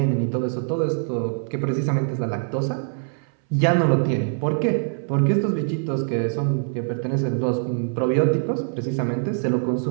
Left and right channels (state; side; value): silent; left; 63 dB below the other